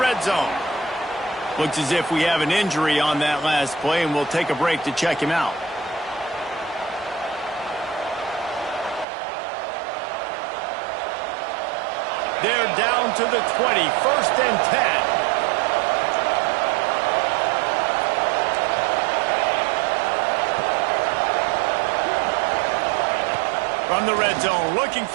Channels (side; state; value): left; drops out; at 9.1 s